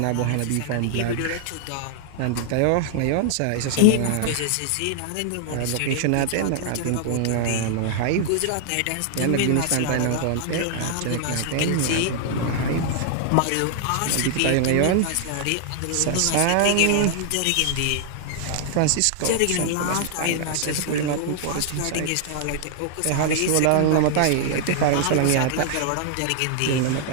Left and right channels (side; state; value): both; different; correlation 0.00